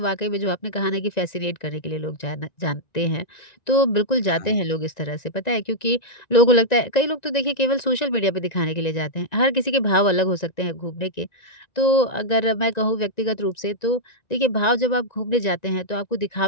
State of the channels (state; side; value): late; right; 1.9 ms